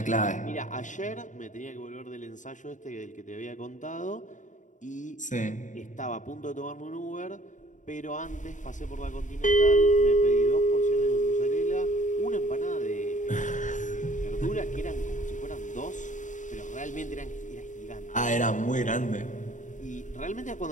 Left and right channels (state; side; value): late; right; 0.36 ms